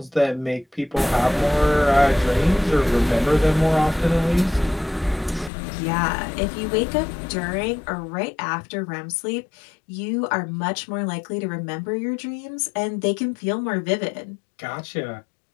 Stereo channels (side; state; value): right; drops out; at 5.5 s